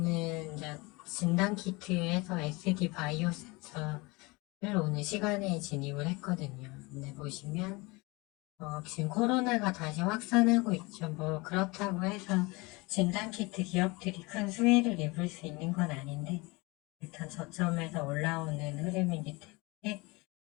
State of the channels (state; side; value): quieter; right; 25.2 dB